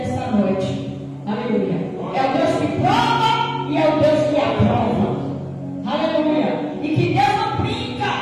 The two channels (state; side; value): identical; both; correlation 1.00